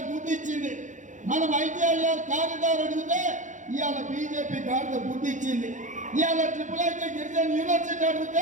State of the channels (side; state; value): left; late; 0.36 ms